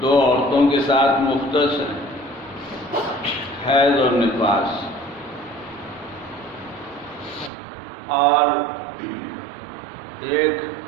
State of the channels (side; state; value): left; drops out; at 7.5 s